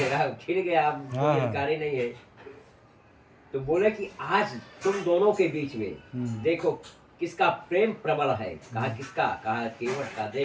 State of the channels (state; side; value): identical; both; correlation 1.00